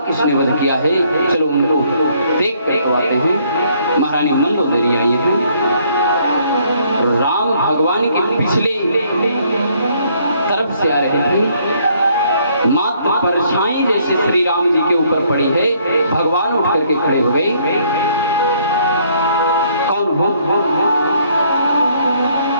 किसने वध किया है। चलो उनको देख कर आते हैं। महारानी मंदोदरी आई है। राम भगवान के पिछले परछाई जैसे श्री राम जी के ऊपर पड़ी है। भगवान उठ करके खड़े हो गए। कौन हो?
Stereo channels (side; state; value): both; inverted; correlation -0.66